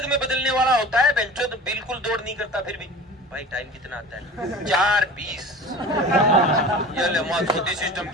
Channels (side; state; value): both; normal; correlation 0.37